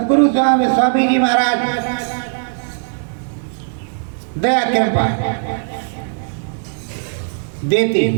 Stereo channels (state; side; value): silent; left; digital silence